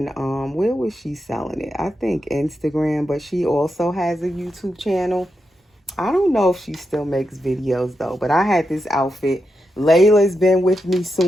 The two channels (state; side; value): normal; both; correlation 0.86